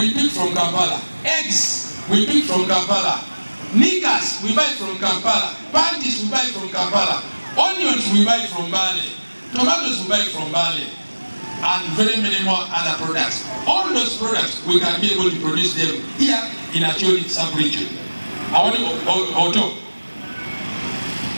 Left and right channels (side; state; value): both; inverted; correlation -1.00